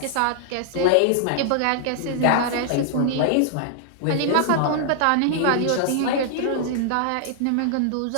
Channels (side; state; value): both; different; correlation -0.01